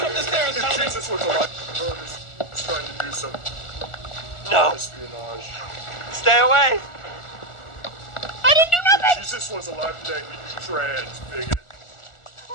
up the stairs, If gentlemen! Jesus was alive, he's trying to do some No! espionage. Stay away! I didn't do If nothing! Jesus was alive today, he'd be trans, bigot.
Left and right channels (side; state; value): right; late; 1.4 ms